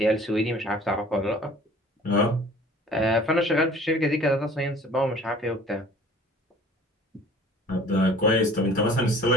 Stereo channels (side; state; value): both; normal; correlation 0.49